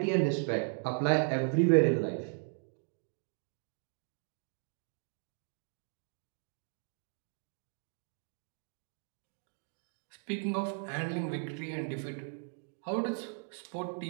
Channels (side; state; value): left; silent; 53 dB below the other